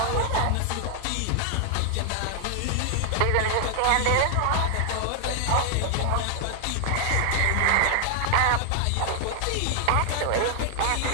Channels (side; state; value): both; different; correlation 0.00